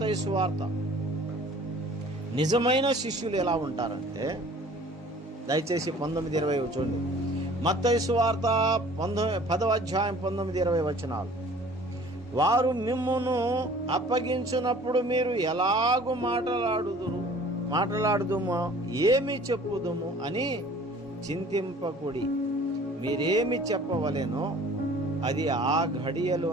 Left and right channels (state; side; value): normal; both; correlation 0.50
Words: సువార్త. నిజమైన శిష్యులు ఎలా ఉంటారంటే, దయచేసి 19-20 చూడండి. మత్తయి సువార్త 10వ అధ్యాయం 19-20 వచనాలు. వారు మిమ్మును అప్పగించినప్పుడు మీరు ఎలాగూ మాట్లాడుదుమో ఏమి చెప్పుదుము అని చింతింపకుడి. మీరేమి చెప్పవలెనో అది ఆ